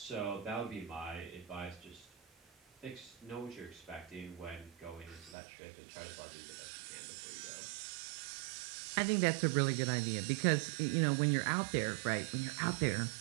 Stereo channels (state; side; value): drops out; left; at 5.4 s